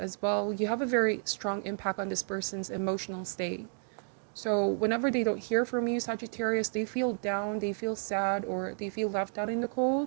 well, you have a very strong impact on this person's emotional state. So whenever they don't hear from you, Sagittarius, they feel down, they feel sad, or they feel left out in the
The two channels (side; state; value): left; silent; 57 dB below the other